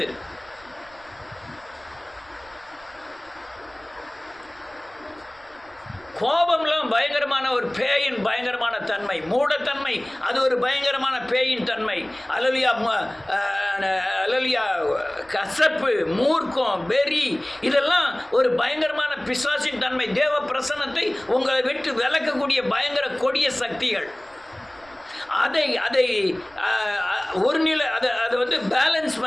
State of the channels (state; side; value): noise; right; rumble, 28 dB below the sound